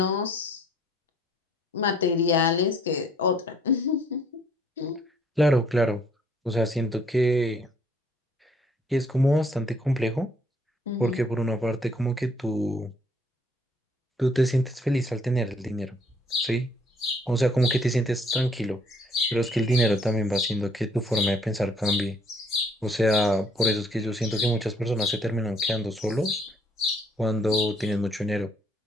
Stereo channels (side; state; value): both; normal; correlation 0.63